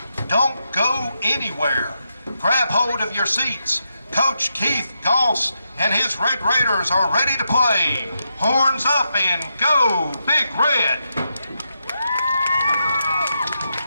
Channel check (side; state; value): both; inverted; correlation -0.84